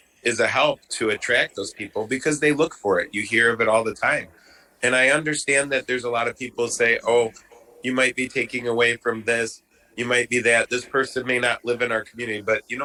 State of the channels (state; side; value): identical; both; correlation 1.00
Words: a help to attract those people because they look for it. You hear of it all the time. And I understand that there's a lot of people say, oh, you might be taking away from this. You might be that. This person may not live in our community. But you